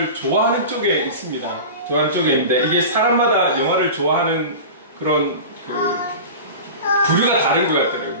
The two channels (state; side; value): inverted; both; correlation -0.32